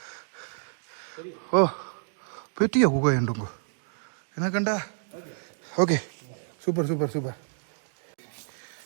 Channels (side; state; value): left; silent; digital silence